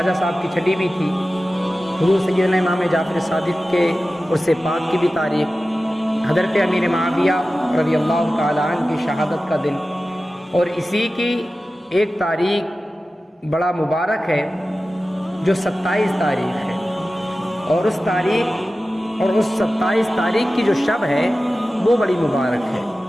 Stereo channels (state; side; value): normal; both; correlation 0.95